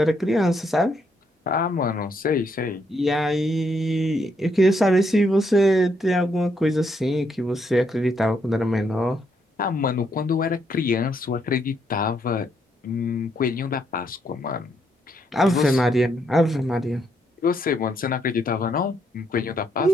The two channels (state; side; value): normal; both; correlation 0.75